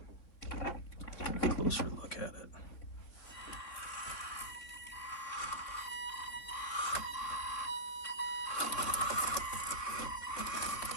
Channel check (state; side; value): late; right; 3.9 ms